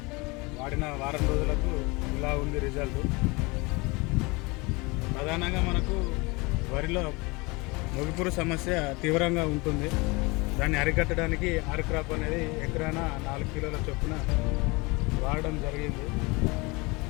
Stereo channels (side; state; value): right; quieter; 25.9 dB